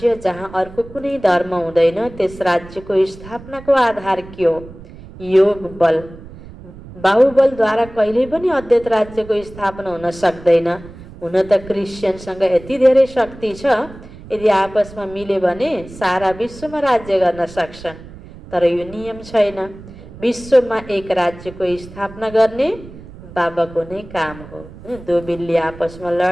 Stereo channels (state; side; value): noise; right; rumble, 17 dB below the sound